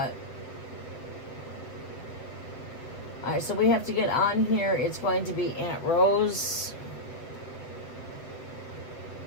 right, so we have to get on here. It's going to be Aunt Rose,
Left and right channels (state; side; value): late; right; 7.8 ms